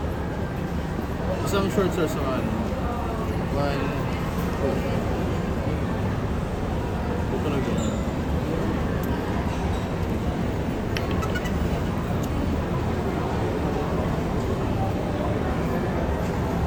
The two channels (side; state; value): both; identical; correlation 1.00